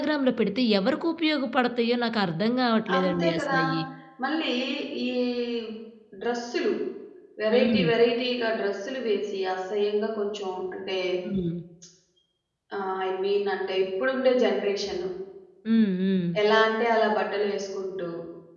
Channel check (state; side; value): identical; both; correlation 1.00